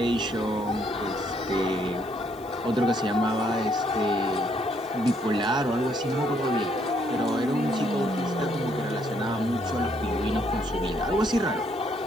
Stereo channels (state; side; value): noise; left; hiss, 26 dB below the sound